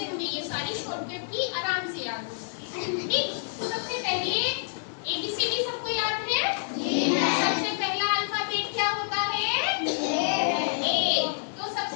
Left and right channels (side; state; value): right; silent; digital silence